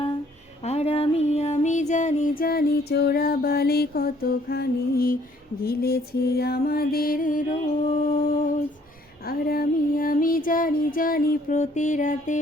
আর আমি জানি চোরাবালি কতখানি গিলেছে আমাদের রোজ। আর আমি জানি প্রতি রাতে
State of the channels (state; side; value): normal; both; correlation 0.62